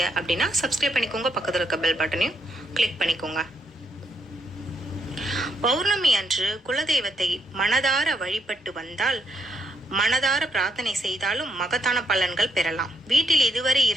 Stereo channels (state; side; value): normal; both; correlation 0.77